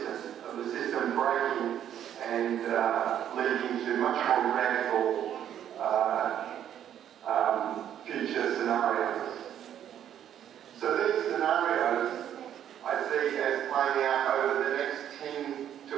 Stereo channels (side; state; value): left; quieter; 10.2 dB